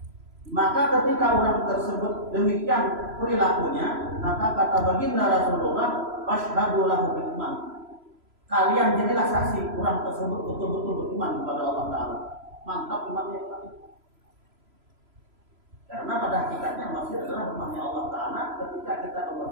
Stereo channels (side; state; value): left; late; 3.0 ms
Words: Maka ketika orang tersebut demikian perilakunya, maka kata baginda Rasulullah, fashhadu lahu bil iman. Kalian jadilah saksi orang tersebut betul-betul beriman kepada Allah Ta'ala. Mantap imannya. Karena pada hakikatnya masjid adalah rumahnya Allah Ta'ala. Ketika kita ke